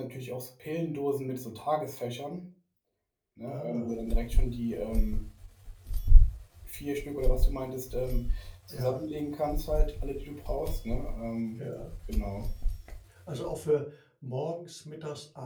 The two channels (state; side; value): identical; both; correlation 1.00